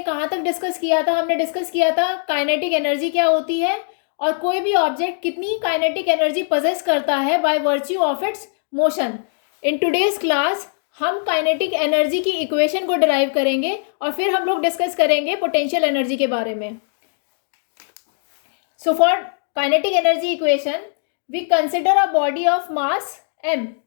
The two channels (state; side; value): silent; right; digital silence